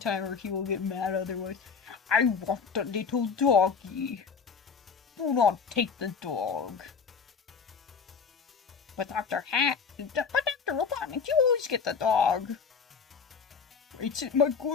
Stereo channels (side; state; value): right; quieter; 5.8 dB